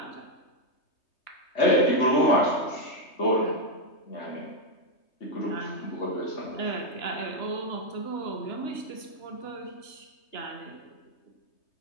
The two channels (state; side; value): late; right; 3.3 ms